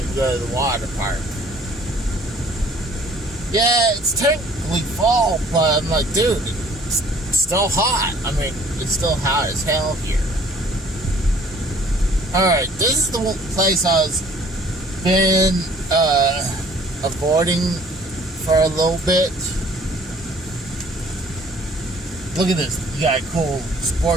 to go to the water park. Yeah, it's technically fall, but I'm like, dude, it's still hot. I mean, it's still hot as hell here. Alright, this is the place I was been avoiding for a little bit. Look at this. You got a cool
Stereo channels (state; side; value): normal; both; correlation 0.55